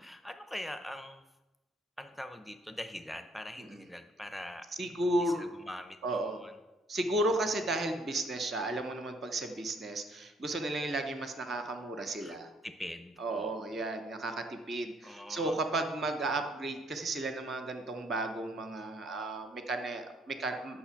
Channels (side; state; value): both; normal; correlation 0.65